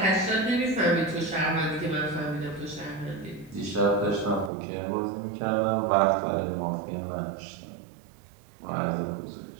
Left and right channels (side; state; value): left; drops out; at 4.5 s